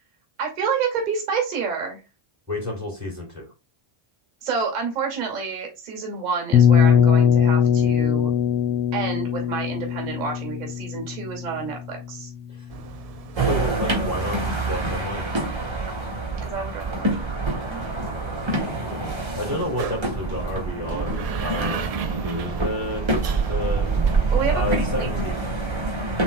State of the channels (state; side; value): late; left; 1.3 ms